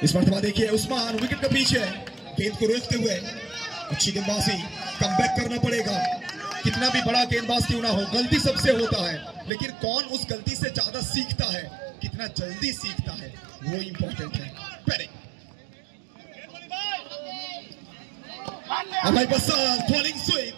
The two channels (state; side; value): drops out; left; at 9.5 s